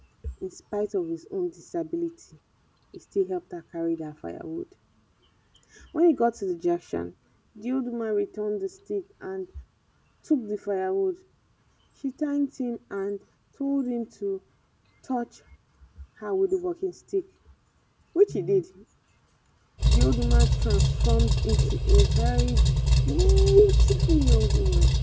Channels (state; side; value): identical; both; correlation 1.00